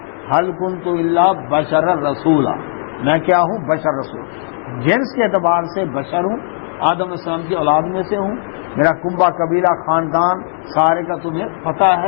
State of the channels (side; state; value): right; silent; digital silence